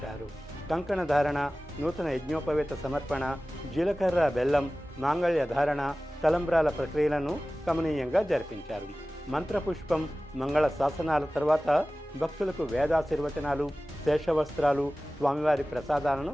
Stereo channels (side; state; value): both; normal; correlation 0.97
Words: కంకణ ధారణ, నూతన యజ్ఞోపవేత సమర్పణ, జీలకర్ర బెల్లం, మాంగళ్య ధారణ, తలంబ్రాల ప్రక్రియలను కమనీయంగా జరిపించారు. మంత్రపుష్పం, మంగళ శాసనాల తర్వాత భక్తులకు వేదాశీర్వచనాలు, శేషవస్త్రాలు, స్వామివారి